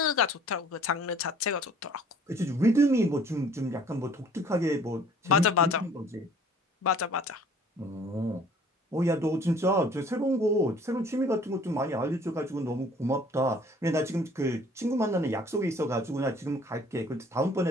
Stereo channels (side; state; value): both; normal; correlation 0.54